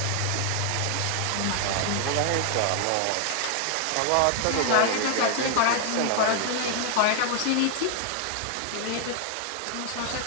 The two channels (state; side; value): different; both; correlation 0.00